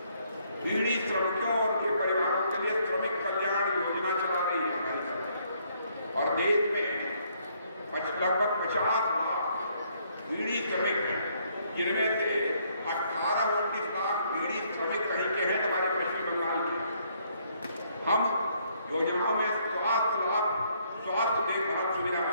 बीड़ी श्रमिकों और उनके परिवारों के लिए श्रमिक कल्याण योजना चला रही है हमारी सरकार। और देश में लगभग 50 लाख बीड़ी श्रमिक हैं, जिनमें से 18-19 लाख बीड़ी श्रमिक कहीं के हैं हमारे पश्चिम बंगाल के। हम योजनाओं में स्वास्थ्य लाभ, स्वास्थ्य देखभाल सुविधा,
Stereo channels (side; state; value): both; inverted; correlation -0.69